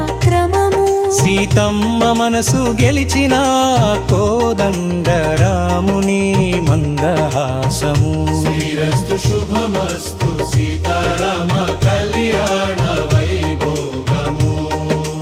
సీతమ్మ మనసు గెలిచిన కోదండ రాముని మందహాసము శ్రీరస్తు శుభమస్తు సీతారామ కళ్యాణ వైభోగము.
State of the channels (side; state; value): both; identical; correlation 1.00